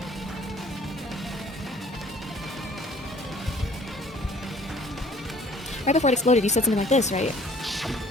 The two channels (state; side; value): normal; both; correlation 0.54